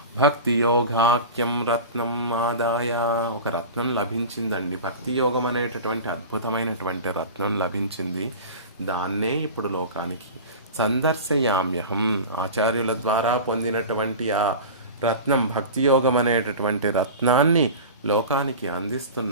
భక్తి యోగాఖ్యం రత్నం ఆదాయ. ఒక రత్నం లభించిందండి. భక్తి యోగం అనేటటువంటి అద్భుతమైనటువంటి రత్నం లభించింది. దాన్నే ఇప్పుడు లోకానికి సందర్శయామ్యహం. ఆచార్యుల ద్వారా పొందినటువంటి ఆ రత్నం, భక్తి యోగం అనేటటువంటి రత్నాన్ని లోకానికి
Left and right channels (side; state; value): both; inverted; correlation -0.32